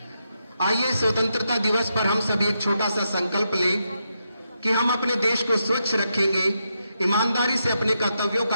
आइए स्वतंत्रता दिवस पर हम सभी एक छोटा सा संकल्प लें कि हम अपने देश को स्वच्छ रखेंगे, ईमानदारी से अपने कर्तव्यों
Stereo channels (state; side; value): inverted; both; correlation -0.84